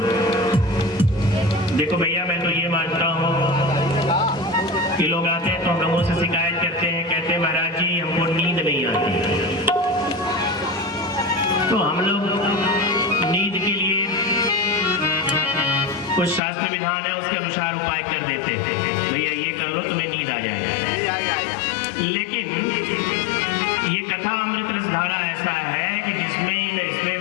देखो भैया, मैं तो ये मानता हूँ कि लोग आते हैं तो हम लोगों से शिकायत करते हैं, कहते हैं महाराज जी हमको नींद नहीं आती। तो हम लोग नींद के लिए कुछ शास्त्र विधान है, उसके अनुसार उपाय कर देते हैं, भैया ये कर लो तुम्हें नींद आ जाएगा। लेकिन ये कथा अमृत रस धारा ऐसा है कि इसमें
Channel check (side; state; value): right; drops out; at 16.4 s